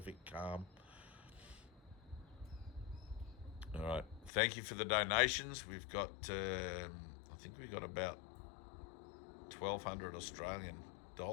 calm. All right. Thank you for the donations. We've got, I think we've got about 1,200 Australian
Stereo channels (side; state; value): right; drops out; at 4.3 s